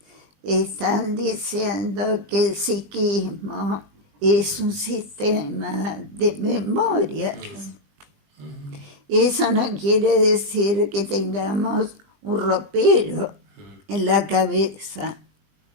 están diciendo que el psiquismo es un sistema de memorias. Eso no quiere decir que tengamos un ropero en la cabeza.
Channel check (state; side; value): late; left; 20 ms